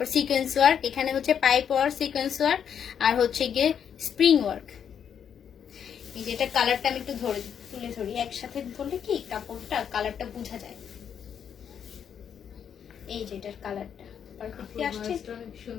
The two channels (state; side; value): quieter; right; 8.1 dB